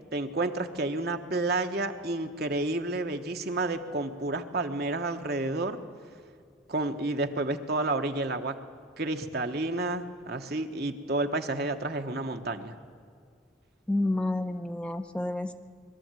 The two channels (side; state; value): both; normal; correlation 0.31